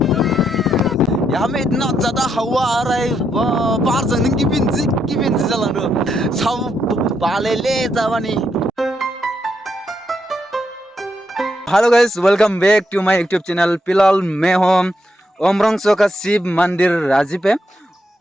यहाँ में इतना ज़्यादा हवा आ रहा है, बाहर जाने की बिंजी चलानो सब बाले ले जावानी। Hello guys, welcome back to my YouTube channel. फिलहाल मैं हूँ ओमरंगसो का शिव मंदिर राजी पे,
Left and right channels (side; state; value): both; normal; correlation 0.79